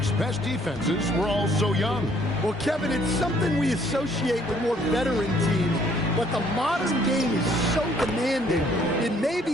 best defenses were all so young? Well, Kevin, it's something we associate with more veteran teams, but the modern game is so demanding, it may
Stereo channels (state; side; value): normal; both; correlation 0.62